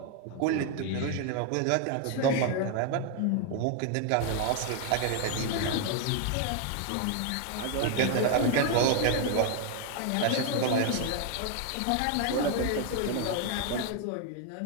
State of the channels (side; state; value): both; different; correlation 0.01